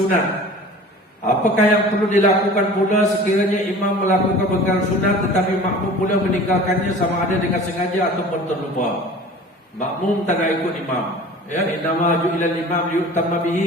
Apakah yang perlu dilakukan pula sekiranya imam melakukan perkara sunat tetapi makmum pula meninggalkannya sama ada dengan sengaja ataupun terlupa? Makmum tak nak ikut imam. Ya, innama ju'ilal imam liyutamma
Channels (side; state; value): both; normal; correlation 0.42